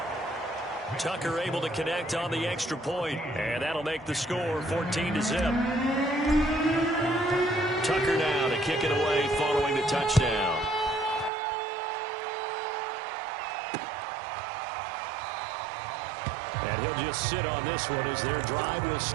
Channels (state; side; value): drops out; left; at 11.3 s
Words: Tucker able to connect on the extra point, and that'll make the score 14-0. Tucker now to kick it away following the touchdown. And he'll just sit on this one as their drive will